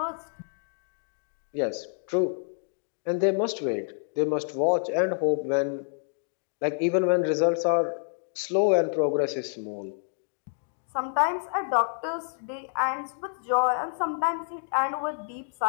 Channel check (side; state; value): right; silent; digital silence